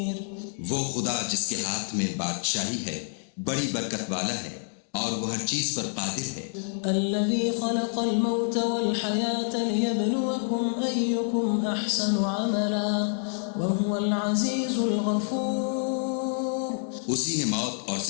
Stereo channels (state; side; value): silent; right; digital silence